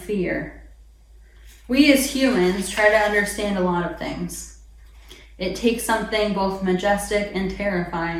We as humans try to understand a lot of things. It takes something both majestic and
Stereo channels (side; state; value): both; identical; correlation 1.00